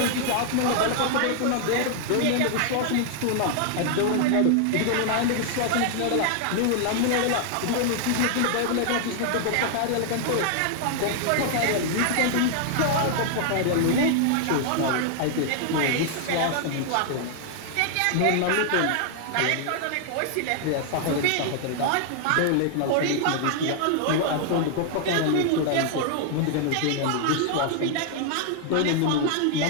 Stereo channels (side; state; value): both; different; correlation 0.00